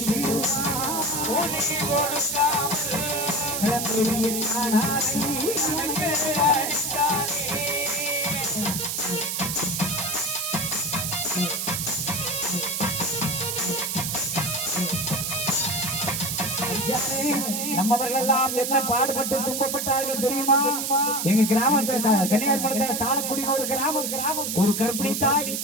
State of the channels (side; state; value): right; noise; hiss, 2 dB below the sound